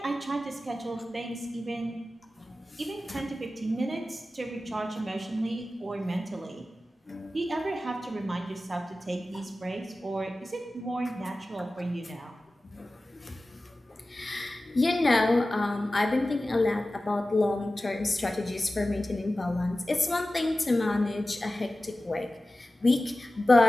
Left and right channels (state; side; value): normal; both; correlation 0.95